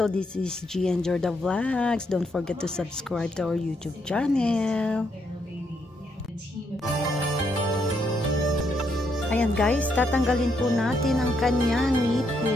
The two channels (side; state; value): both; normal; correlation 0.76